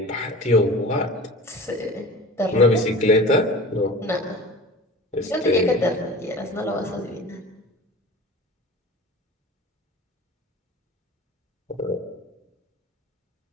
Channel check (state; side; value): normal; both; correlation 0.38